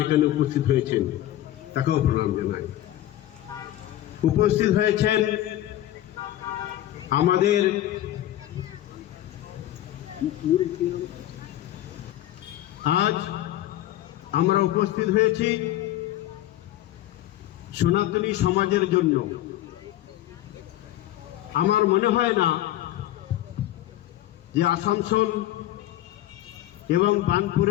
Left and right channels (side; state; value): right; quieter; 13.9 dB